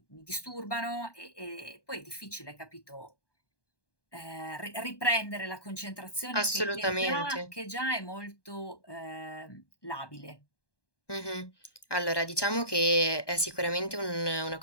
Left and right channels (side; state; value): right; late; 1.2 ms